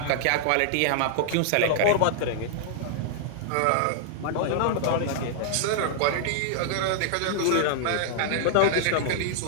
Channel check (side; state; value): both; different; correlation -0.01